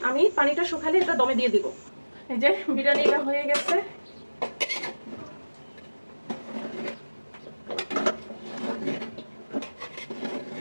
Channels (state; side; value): inverted; both; correlation -1.00